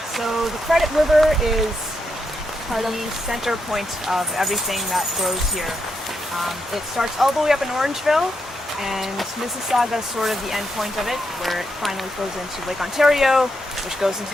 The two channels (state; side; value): normal; both; correlation 0.82